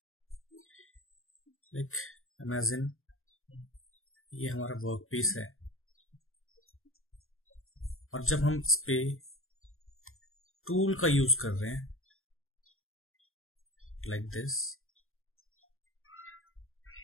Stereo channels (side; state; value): right; late; 0.61 ms